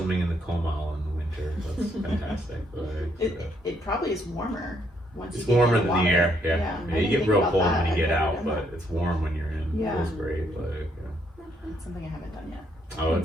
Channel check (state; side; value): normal; both; correlation 0.72